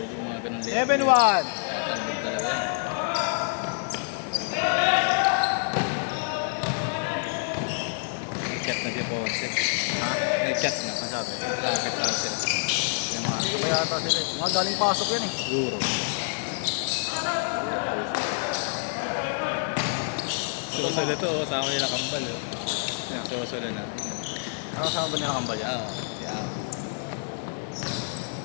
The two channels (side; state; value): right; silent; 60 dB below the other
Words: yung mga ganun 7-1! Talbog talaga yan. Nag-chat na si Ponce. Ha? Nag-chat na. Ang sabi? Lapit na sila. Yung mga sabay ata sila. Mga galing pasok yan eh. Siguro. Susula to, oh. Sama nila kambal. Oh. Yeah. Susula na. Ano kasama ba nila kambal yan? Oo. Si Al.